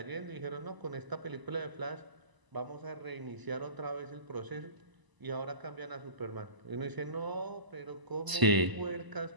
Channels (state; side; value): late; left; 1.0 ms